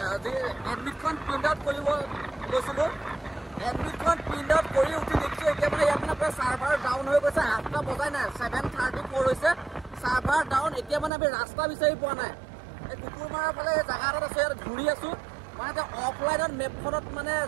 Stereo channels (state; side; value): drops out; left; at 11.1 s